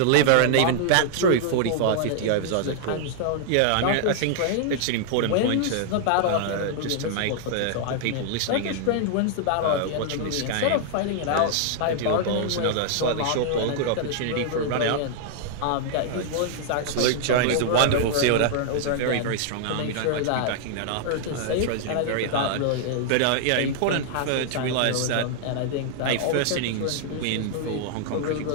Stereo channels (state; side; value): different; both; correlation -0.01